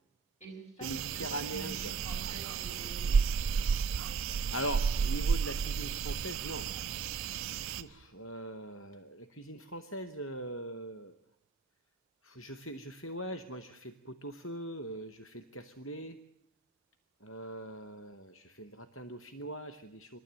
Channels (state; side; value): quieter; left; 4.7 dB